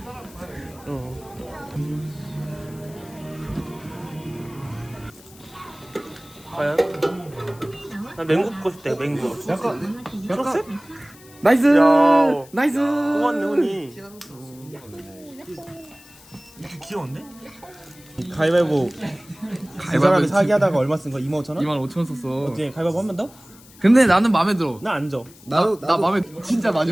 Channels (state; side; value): noise; left; hiss, 23 dB below the sound